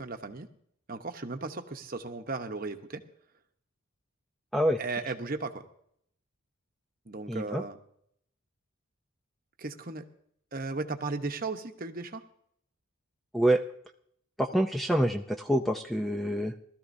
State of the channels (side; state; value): both; normal; correlation 0.75